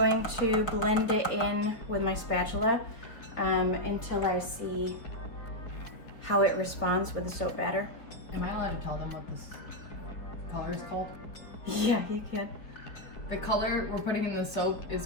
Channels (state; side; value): late; right; 4.8 ms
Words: to blend it in with my spatula until I see how it responds with the soap batter. Am I allowed to tell them what this color is called? Yeah, you can. The color we're putting in the soap